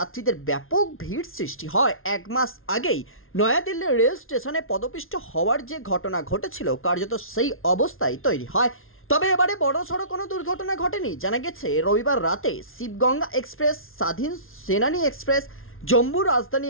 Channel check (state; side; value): late; right; 0.61 ms